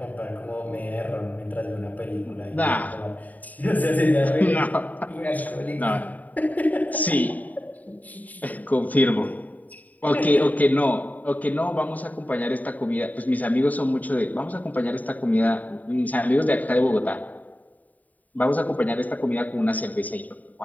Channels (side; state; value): right; late; 0.076 ms